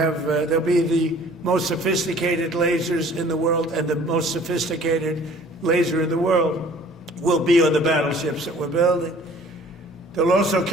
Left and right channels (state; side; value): normal; both; correlation 0.52